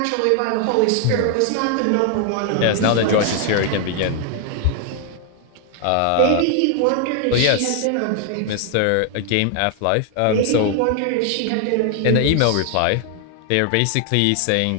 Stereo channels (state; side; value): different; both; correlation 0.00